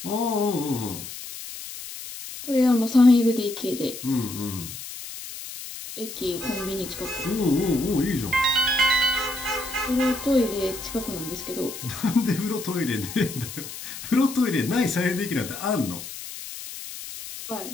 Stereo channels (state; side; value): noise; left; hiss, 11 dB below the sound